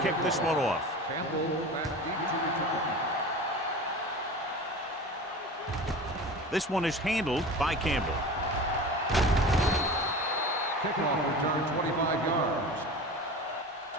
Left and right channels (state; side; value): normal; both; correlation 0.34